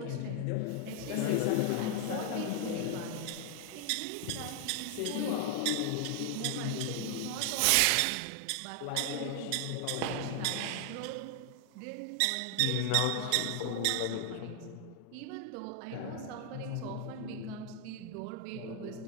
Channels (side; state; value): both; different; correlation 0.00